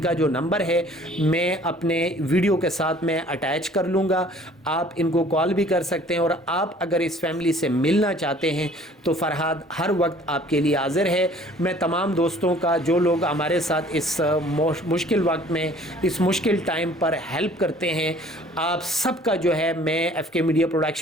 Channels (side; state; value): both; normal; correlation 0.53